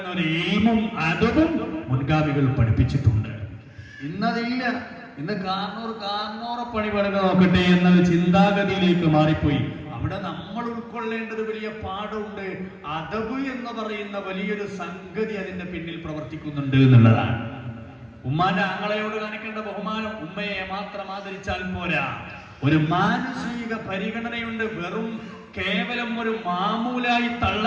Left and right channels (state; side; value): identical; both; correlation 1.00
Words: എയിമും അതബും മുൻഗാമികൾ പഠിപ്പിച്ചിട്ടുണ്ട്. ഇന്നതില്ല. ഇന്ന് കാർണോറെ പണി പണിത് നോക്കട്ടെ എന്നൊരു ചിന്താഗതിയിലേക്ക് മാറിപ്പോയി. അവിടെ നമ്മൾ ഉൾക്കൊള്ളേണ്ടത് വലിയ പാഠമുണ്ട്. അദബ് എന്ന് പറയുന്ന വലിയൊരു സംഗതി അതിന്റെ പിന്നിൽ പ്രവർത്തിക്കുന്നുണ്ട് എന്നുള്ളതാണ്. ഉമ്മാന്റെ ആങ്ങളയോട് കാണിക്കേണ്ട ബഹുമാനം ഉമ്മയെ മാത്രം ആദരിച്ചാൽ പോരാ, ഒരു മാനസിക പരിഗണനയുണ്ട്. വെറും കേവലം ഒരു മാമൂലായി